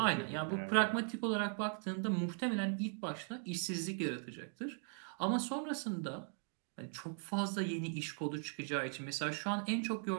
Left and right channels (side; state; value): left; silent; 52 dB below the other